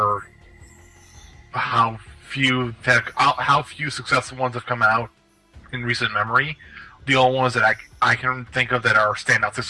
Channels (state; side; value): identical; both; correlation 1.00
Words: how few successful ones have come out in recent memory. The only ones that I can think of that are standout